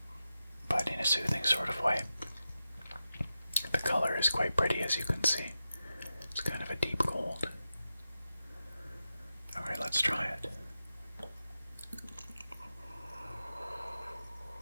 but in a soothing sort of way. The color is quite pretty, as you can see. It's kind of a deep gold. Alright, let's try it.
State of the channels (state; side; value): inverted; both; correlation -0.90